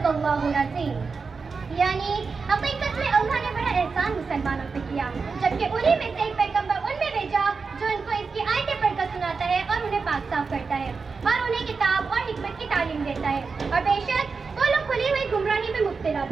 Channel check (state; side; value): quieter; left; 4.8 dB